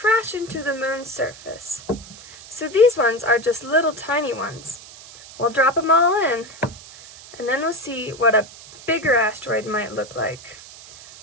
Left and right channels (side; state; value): right; noise; hiss, 18 dB below the sound